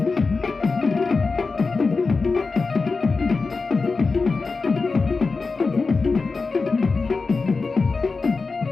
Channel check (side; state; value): right; quieter; 4.2 dB